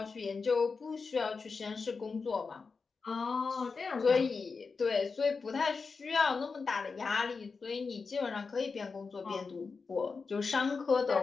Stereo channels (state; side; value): quieter; right; 4.7 dB